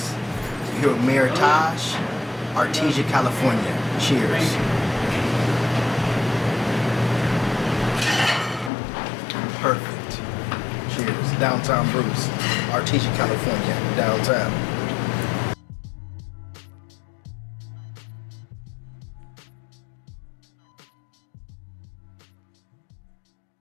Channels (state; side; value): drops out; right; at 8.7 s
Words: here with Mayor Taj, Artesia, California. Cheers. Perfect. Cheers. Downtown Bruce, Artesia, California. Downtown.